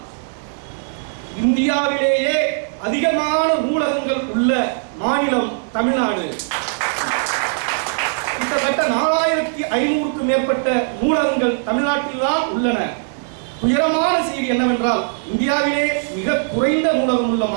இந்தியாவிலேயே அதிகமான நூலகங்கள் உள்ள மாநிலம் தமிழ்நாடு. கிட்டத்தட்ட 4500க்கும் மேற்பட்ட நூலகங்கள் தமிழ்நாட்டில் தான் உள்ளன. உயரமான செய்தி என்னவென்றால், இந்தியாவிலே மிக குறைந்த நூலகம் உள்ள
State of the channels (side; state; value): left; silent; 66 dB below the other